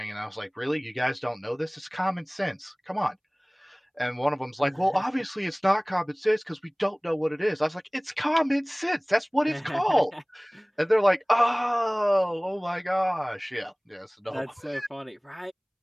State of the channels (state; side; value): identical; both; correlation 1.00